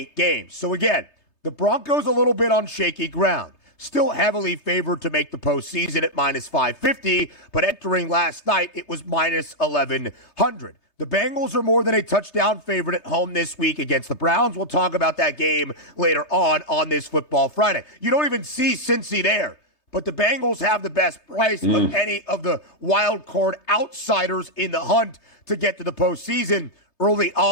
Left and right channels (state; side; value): late; right; 3.5 ms